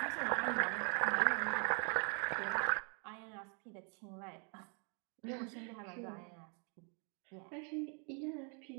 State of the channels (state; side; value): quieter; left; 38.3 dB